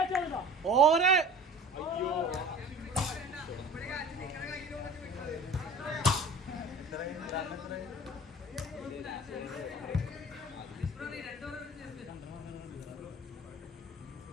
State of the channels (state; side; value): normal; both; correlation 0.43